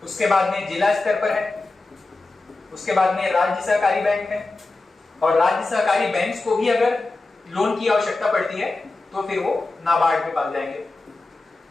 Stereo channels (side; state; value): right; quieter; 3.3 dB